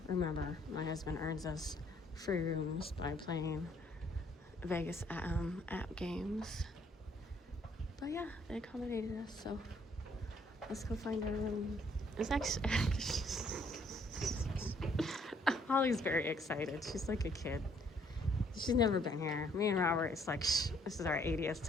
Remember, my husband earns us free rooms by playing Vegas app games. But yeah, they accommodated us, so let's go find our room. It's actually Holly's very excited. She's like a kid. She's never been here. Me and Robert, it's like, this is our 80th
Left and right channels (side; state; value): both; normal; correlation 0.65